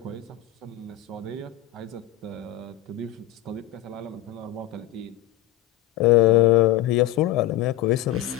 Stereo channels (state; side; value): quieter; right; 13.4 dB